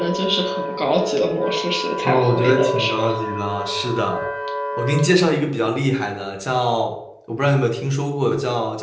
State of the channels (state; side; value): identical; both; correlation 1.00